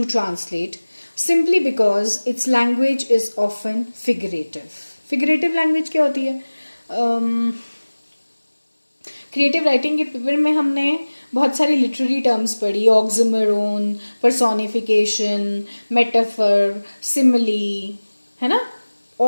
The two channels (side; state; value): both; inverted; correlation -1.00